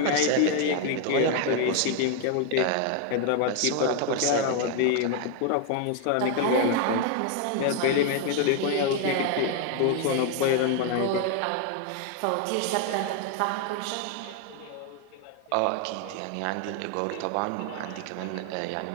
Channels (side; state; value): both; different; correlation 0.01